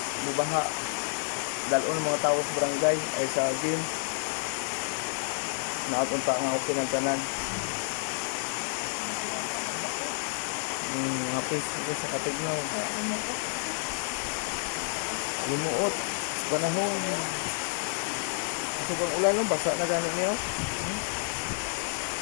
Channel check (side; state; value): right; silent; digital silence